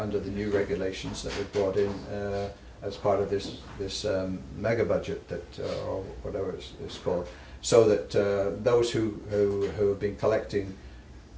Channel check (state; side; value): identical; both; correlation 1.00